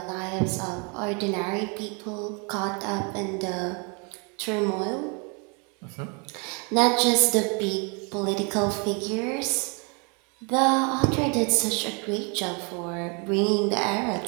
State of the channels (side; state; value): left; quieter; 34.1 dB